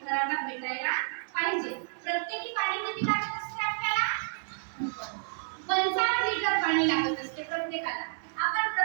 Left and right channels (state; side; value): silent; left; 58 dB below the other